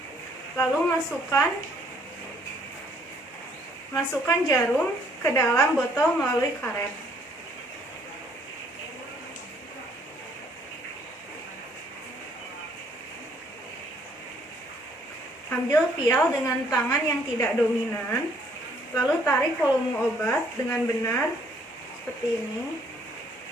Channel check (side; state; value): both; normal; correlation 0.64